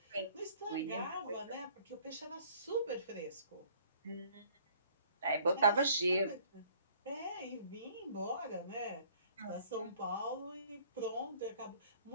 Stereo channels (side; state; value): both; inverted; correlation -0.57